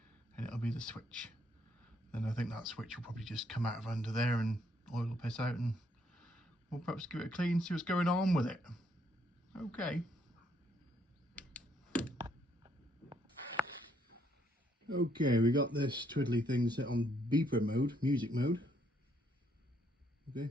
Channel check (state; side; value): normal; both; correlation 0.71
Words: and it'll be the switch. Then I think that switch will probably just come out of under there and oil will piss out, and we'll perhaps give it a clean, see what's going on with it. Okay. Okay, we got this twiddly thing set on beeper mode, music mode. Okay,